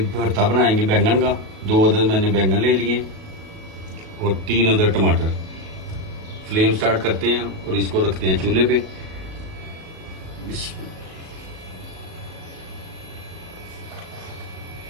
भरता बनाएंगे बैंगन का। 2 अदद मैंने बैंगन ले लिए और 3 अदद टमाटर। फ्लेम स्टार्ट करते हैं और इसको रखते हैं चूल्हे पे।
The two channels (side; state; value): left; late; 37 ms